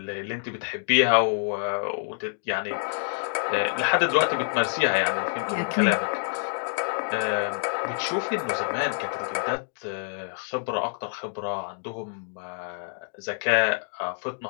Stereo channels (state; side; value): silent; right; digital silence